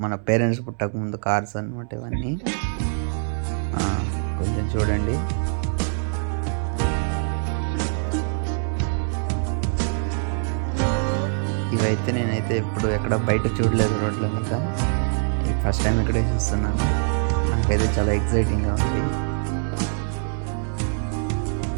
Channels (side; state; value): left; silent; 63 dB below the other